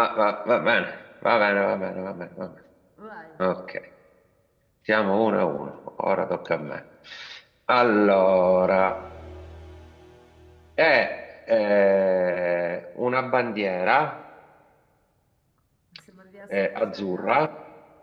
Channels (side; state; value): both; identical; correlation 1.00